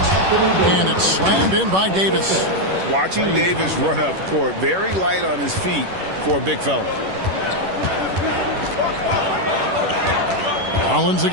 And it's slammed in by Davis. Watching Davis run up court, very light on his feet for a big fella. Rollins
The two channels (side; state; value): left; late; 11 ms